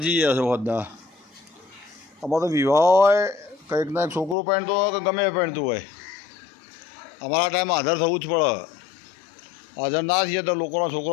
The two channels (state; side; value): drops out; right; at 4.4 s